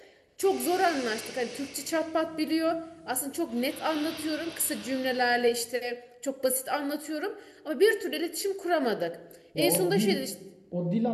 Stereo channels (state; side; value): identical; both; correlation 1.00